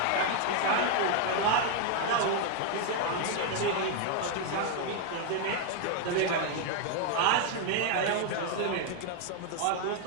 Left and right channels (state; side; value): different; both; correlation 0.00